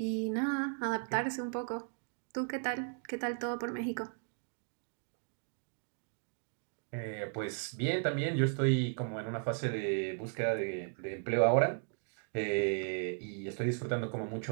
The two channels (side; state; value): left; silent; 54 dB below the other